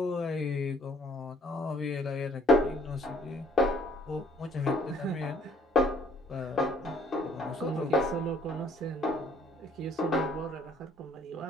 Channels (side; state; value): both; normal; correlation 0.60